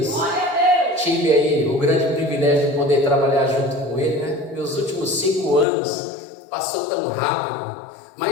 Tive aí o grande privilégio de poder trabalhar junto com ele, né? Meus últimos 5 anos passou tão rápido,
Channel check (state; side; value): drops out; right; at 5.7 s